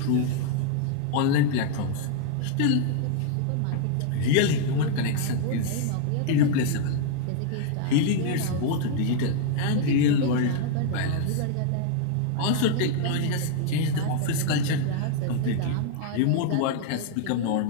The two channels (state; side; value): different; both; correlation 0.00